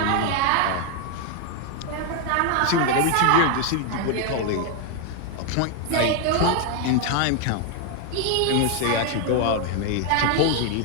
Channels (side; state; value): both; different; correlation 0.01